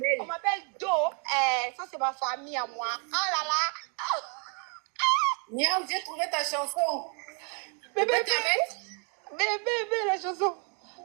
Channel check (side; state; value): left; quieter; 36.9 dB